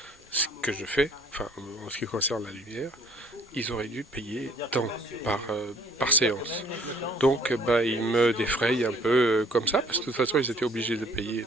ce que je fais, enfin en ce qui concerne la lumière, ils auraient dû payer tant par séance. Donc ils me défrayent un peu comme ça, parce que de toute façon ils étaient obligés de payer.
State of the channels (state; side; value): normal; both; correlation 0.58